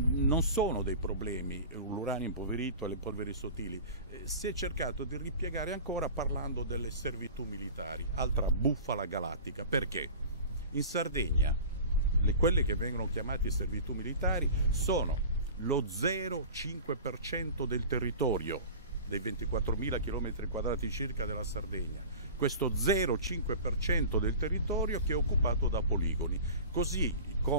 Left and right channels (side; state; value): both; inverted; correlation -0.36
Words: sono dei problemi l'uranio impoverito e le polveri sottili. Si è cercato di ripiegare ancora parlando delle servitù militari, altra bufala galattica. Perché? In Sardegna quelle che vengono chiamate servitù militari sono lo 0,5% del territorio, dei 24.000 km² circa della Sardegna. Questo 0,5% del territorio che è occupato da poligoni, così